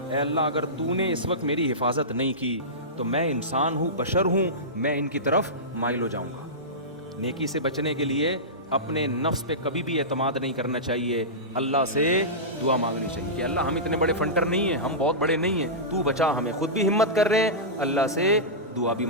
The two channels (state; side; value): normal; both; correlation -0.17